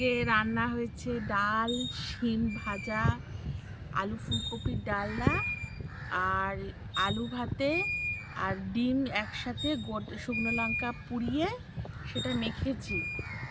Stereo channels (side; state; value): both; identical; correlation 1.00